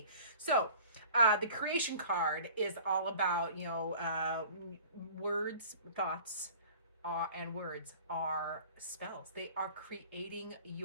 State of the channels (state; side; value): inverted; both; correlation -0.46